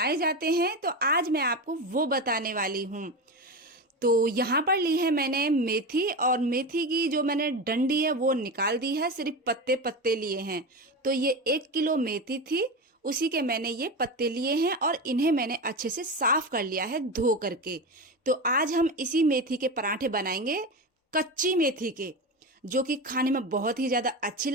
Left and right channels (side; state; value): both; normal; correlation 0.22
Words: जाते हैं, तो आज मैं आपको वो बताने वाली हूँ। तो यहाँ पर ली है मैंने मेथी, और मेथी की जो मैंने डंडी है वो निकाल दी है, सिर्फ पत्ते पत्ते लिए हैं। तो ये 1 किलो मेथी थी, उसी के मैंने ये पत्ते लिए हैं और इन्हें मैंने अच्छे से साफ कर लिया है धो करके। तो आज हम इसी मेथी के पराठे बनाएंगे, कच्ची मेथी के, जो कि खाने में बहुत ही ज़्यादा अच्छी